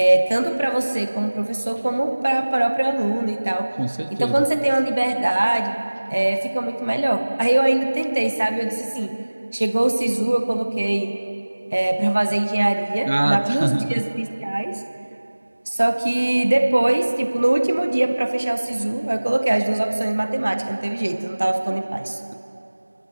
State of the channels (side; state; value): both; inverted; correlation -1.00